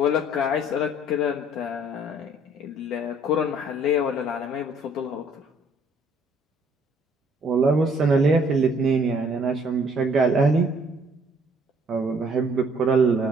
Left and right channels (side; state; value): both; normal; correlation 0.61